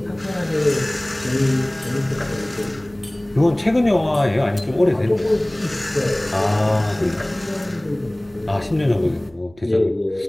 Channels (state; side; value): noise; right; hum, 27 dB below the sound